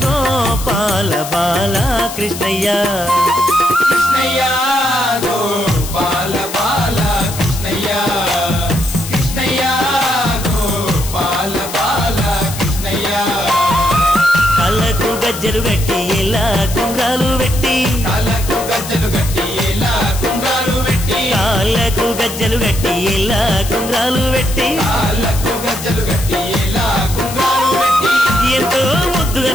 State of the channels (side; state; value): left; noise; hiss, 10 dB below the sound